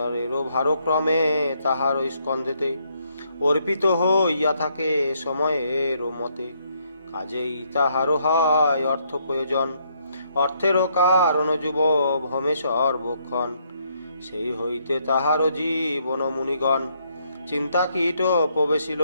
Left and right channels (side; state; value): both; inverted; correlation -0.72